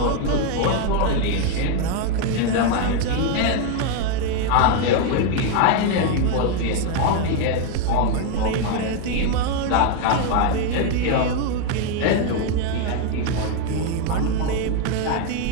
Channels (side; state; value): both; different; correlation 0.01